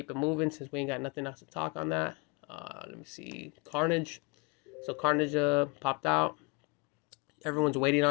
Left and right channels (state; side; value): quieter; right; 29.8 dB